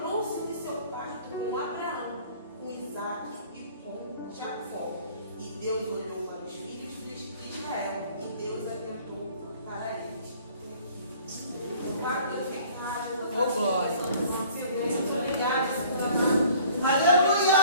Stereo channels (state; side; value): inverted; both; correlation -0.53